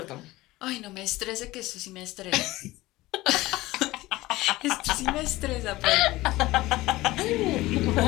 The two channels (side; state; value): right; quieter; 18.6 dB